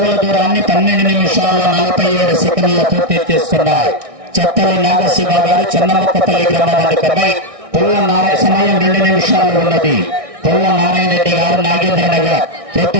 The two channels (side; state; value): left; late; 1.6 ms